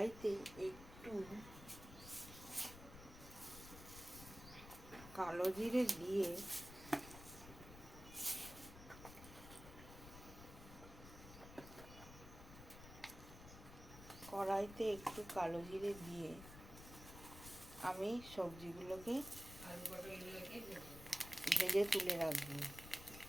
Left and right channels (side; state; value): left; noise; rumble, 14 dB below the sound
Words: একটু কালো জিরে দিয়ে আমি সবজিগুলোকে ভেজে তুলে রাখবো।